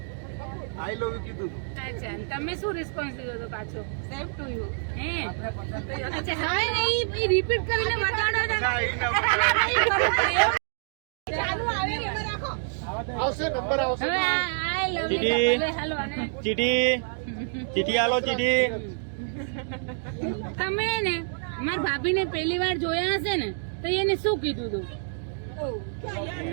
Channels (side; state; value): left; silent; digital silence